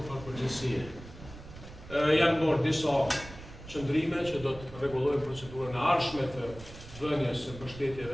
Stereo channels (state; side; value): noise; right; rumble, 16 dB below the sound